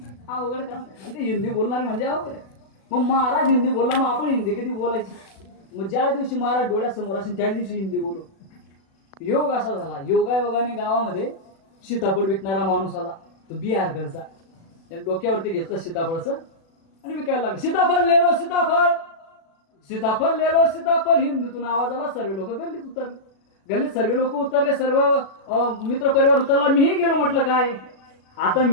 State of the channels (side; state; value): right; late; 36 ms